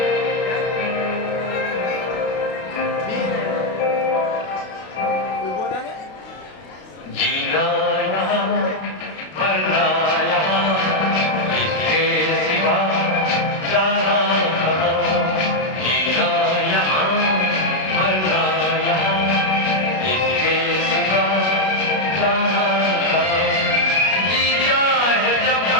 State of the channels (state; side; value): late; right; 32 ms